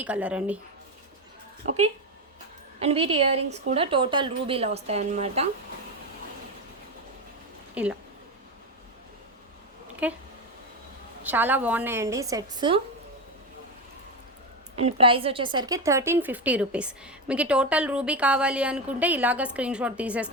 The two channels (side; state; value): both; normal; correlation 0.14